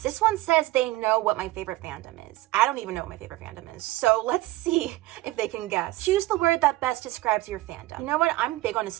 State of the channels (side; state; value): left; quieter; 18.0 dB